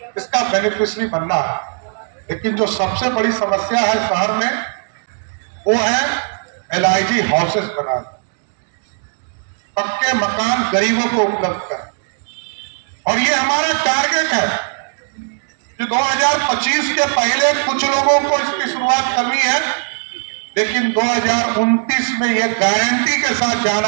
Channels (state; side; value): silent; left; 67 dB below the other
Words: इसका बेनिफिशियरी बनना है। लेकिन जो सबसे बड़ी समस्या है शहर में वो है LIG हाउसेस बनाना, पक्के मकान गरीबों को उपलब्ध करें। और ये हमारा टारगेट है कि 2025 के पहले कुछ लोगों को इसकी शुरुआत करनी है, लेकिन 2029 में ये गारंटी के साथ जाना